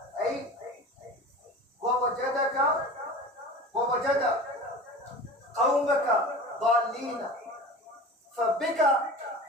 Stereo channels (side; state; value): both; normal; correlation 0.36